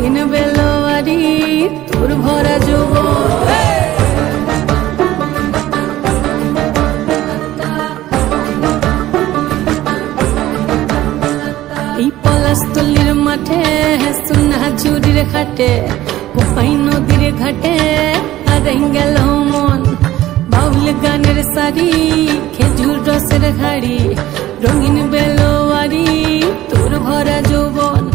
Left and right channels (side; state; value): left; quieter; 14.9 dB